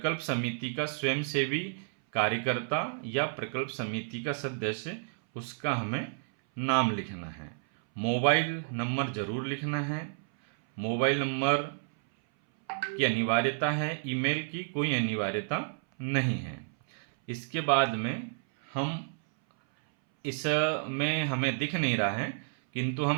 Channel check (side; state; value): left; silent; 57 dB below the other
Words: समिति का स्वयंसेवी कार्यकर्ता या प्रकल्प समिति का सदस्य, उसका हमें नाम लिखना है। मोबाइल नंबर जरूर लिखना है। मोबाइल नंबर की अनिवार्यता है, ईमेल की कोई अनिवार्यता नहीं है। इसके बाद में इसमें हमें दिख नहीं रहा है, किंतु